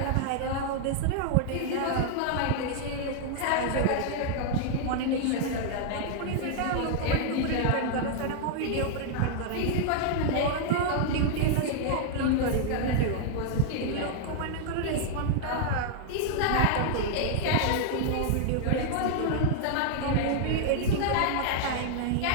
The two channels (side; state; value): both; different; correlation 0.00